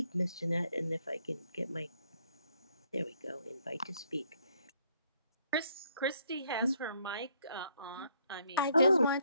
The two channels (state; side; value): inverted; both; correlation -0.69